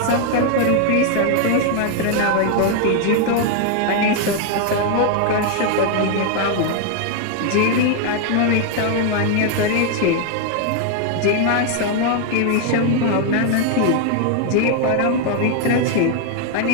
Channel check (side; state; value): both; different; correlation 0.00